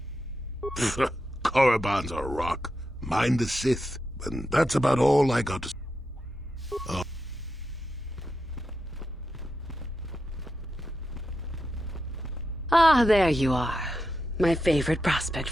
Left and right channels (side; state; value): both; normal; correlation 0.87